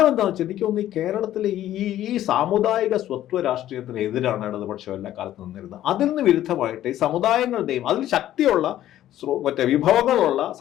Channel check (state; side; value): quieter; right; 12.8 dB